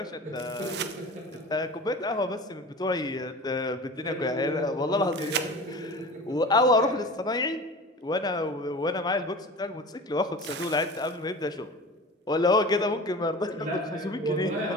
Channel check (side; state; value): both; normal; correlation 0.36